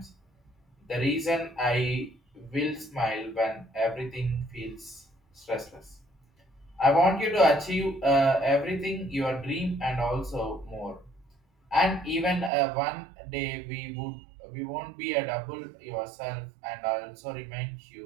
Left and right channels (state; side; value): drops out; left; at 12.5 s